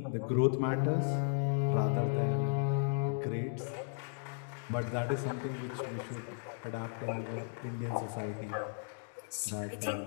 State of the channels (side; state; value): right; silent; digital silence